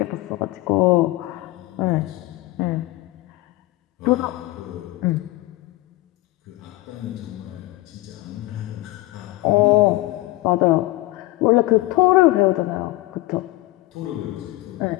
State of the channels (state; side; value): quieter; right; 19.0 dB